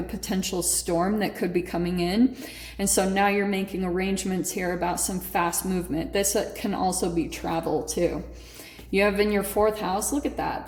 potential storm that could be coming in. And so now you're making arrangements here about some fast movement. This can also be travel too. You have in your fourth house, look at that,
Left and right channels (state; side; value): identical; both; correlation 1.00